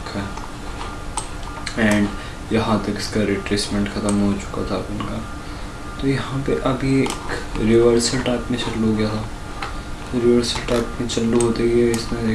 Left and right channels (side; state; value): both; identical; correlation 1.00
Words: है। एंड यहाँ तक इसका रिट्रेसमेंट ख़त्म हो चुका था अपन का। तो यहाँ पे अभी एक रिवर्सल टाइप में चालू हो गया था। तो रिवर्सल टाइप में चालू होते ही इसने